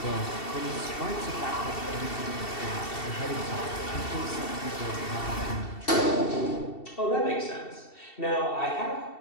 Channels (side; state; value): right; late; 2.7 ms